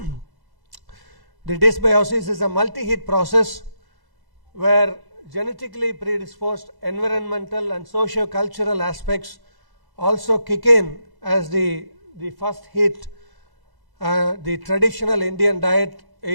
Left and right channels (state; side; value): late; left; 1.1 ms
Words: the dysbiosis is a multi-hit process where genetically predisposed environmental and socio-cultural aspects also kick in as the first hit. The traditional Indian diet